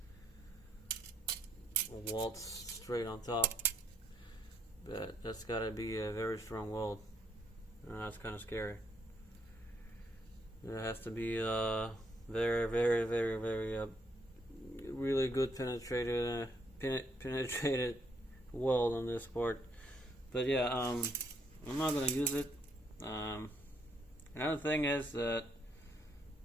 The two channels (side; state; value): both; normal; correlation 0.72